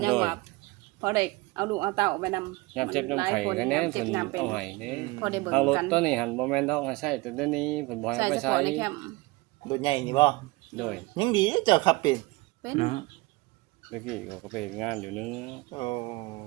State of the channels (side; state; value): left; quieter; 22.8 dB